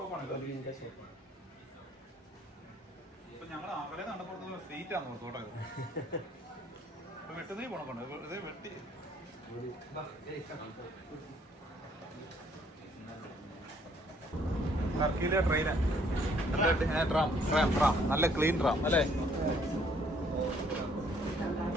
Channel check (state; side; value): normal; both; correlation 0.64